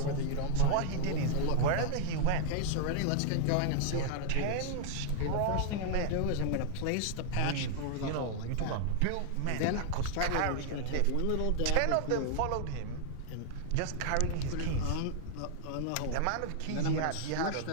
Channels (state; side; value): different; both; correlation -0.01